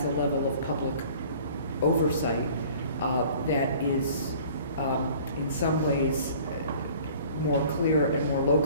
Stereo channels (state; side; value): inverted; both; correlation -0.50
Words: a level of public oversight that is, in some ways, more clear and more